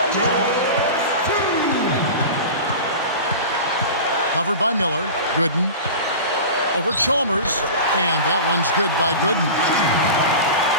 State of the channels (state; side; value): inverted; both; correlation -0.32